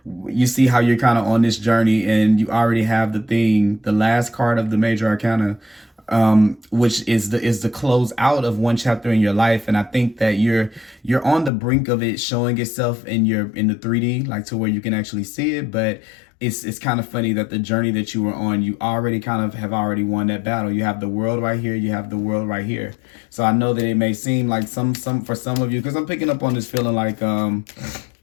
you see how you're kind of on this journey, and you already have the last card of the major arcana, which is the close out of one chapter in your life. And I think that you're on the brink of it showing itself in the 3D, like to where you can actually see it. But it's kind of funny that the journey that you were on, you already kind of have already won that battle. You have the world right here, you have the world right here. So I know that it may seem like some for some of you, because I'm picking up on this feeling like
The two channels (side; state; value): right; drops out; at 11.5 s